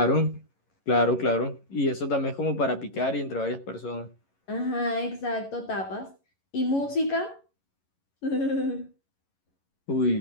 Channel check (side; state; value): right; late; 11 ms